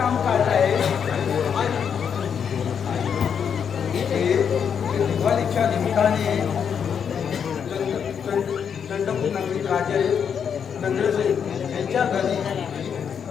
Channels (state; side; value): quieter; right; 7.4 dB